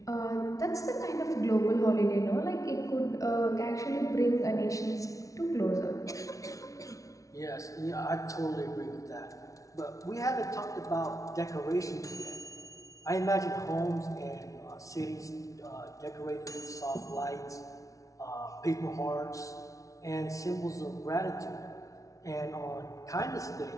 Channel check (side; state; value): right; late; 0.16 ms